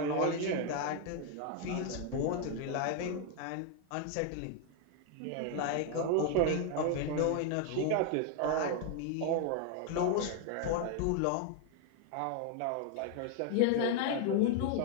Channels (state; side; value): different; both; correlation 0.00